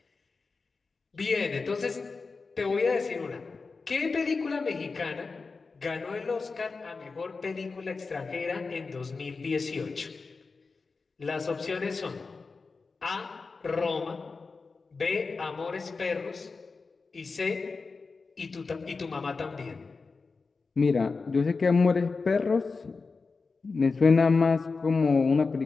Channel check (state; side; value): quieter; right; 4.3 dB